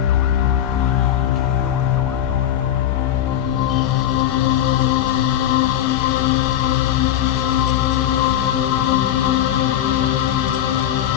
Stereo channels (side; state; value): right; quieter; 11.4 dB